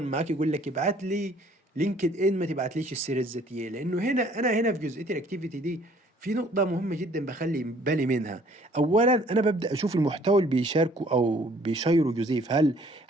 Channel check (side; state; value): both; normal; correlation 0.58